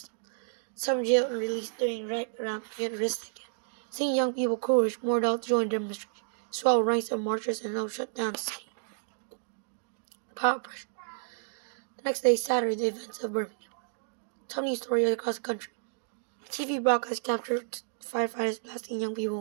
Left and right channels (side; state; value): left; silent; digital silence